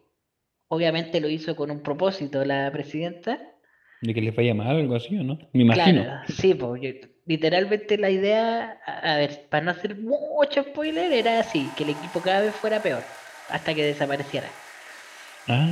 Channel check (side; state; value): both; identical; correlation 1.00